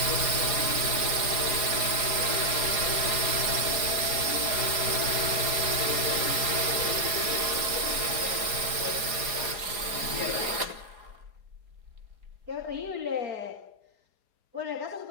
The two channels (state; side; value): late; left; 4.7 ms